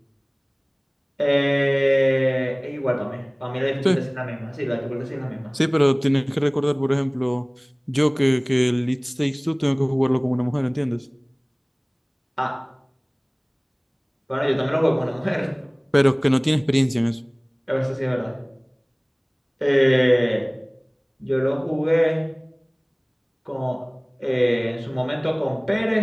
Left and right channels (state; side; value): identical; both; correlation 1.00